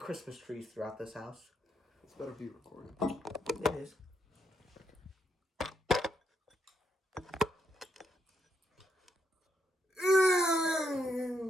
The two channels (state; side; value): normal; both; correlation 0.78